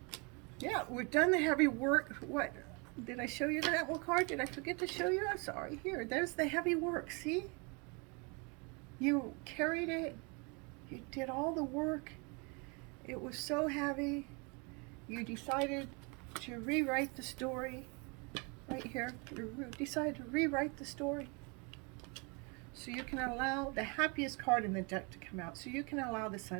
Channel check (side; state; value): left; quieter; 31.2 dB